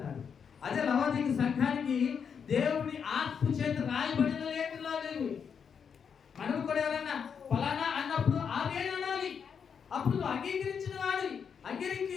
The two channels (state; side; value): quieter; right; 6.9 dB